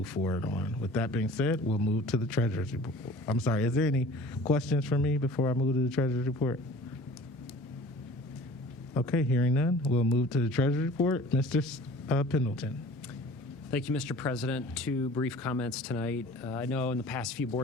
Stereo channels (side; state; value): both; normal; correlation 0.46